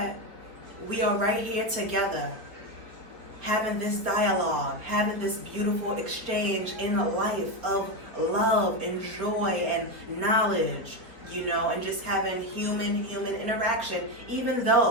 we are right here together, having this dialogue, having this beautiful exchange in a life of love and joy and knowledge, and just having human interaction, even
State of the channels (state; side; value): late; left; 4.3 ms